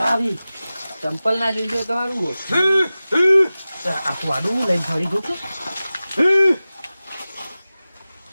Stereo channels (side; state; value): both; inverted; correlation -0.96